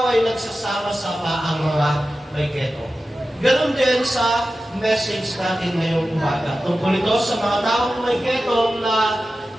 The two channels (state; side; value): normal; both; correlation 0.94